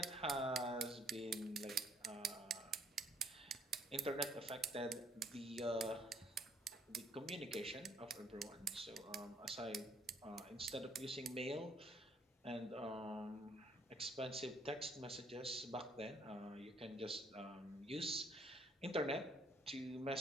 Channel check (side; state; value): both; normal; correlation 0.65